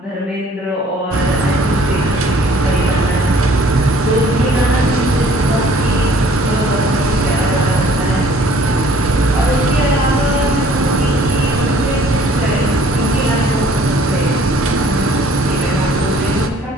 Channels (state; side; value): normal; both; correlation 0.56